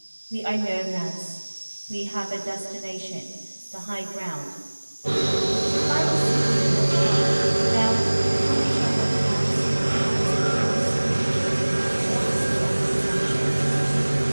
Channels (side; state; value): both; inverted; correlation -1.00